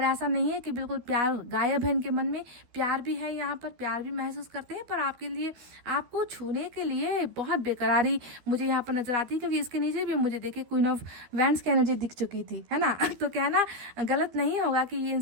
ऐसा नहीं है कि बिल्कुल प्यार गायब है इनके मन में, प्यार भी है, यहाँ पर प्यार भी महसूस करते हैं। पर आपके लिए, आपको छूने के लिए बहुत बेकरारी मुझे यहाँ पर नजर आती है, क्योंकि इसके नीचे भी मुझे देखिए क्वीन ऑफ वैंड्स की एनर्जी दिख चुकी थी, है ना। तो कहना गलत नहीं होगा कि ये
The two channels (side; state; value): left; late; 12 ms